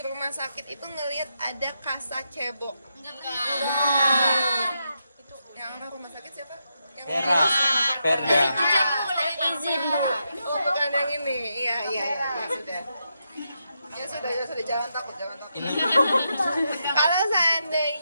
rumah sakit itu ngelihat ada kasa cebok? Yang apa rumah sakit siapa? Yang Perda. Oh, bukan yang ini. Iya, ya sudah. Ya sudah, jangan takut. Kalau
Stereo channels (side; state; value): both; inverted; correlation -0.83